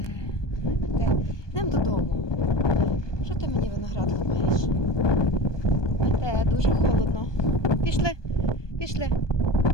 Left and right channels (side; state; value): right; late; 1.2 ms